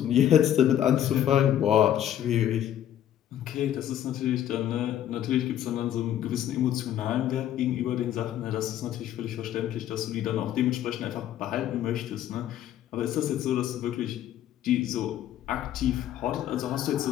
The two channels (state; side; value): quieter; right; 11.2 dB